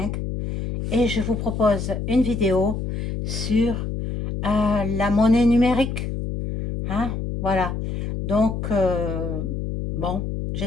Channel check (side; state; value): left; noise; hum, 4 dB below the sound